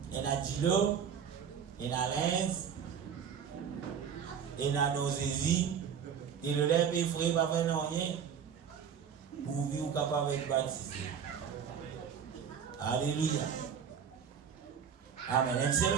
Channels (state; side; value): quieter; left; 7.6 dB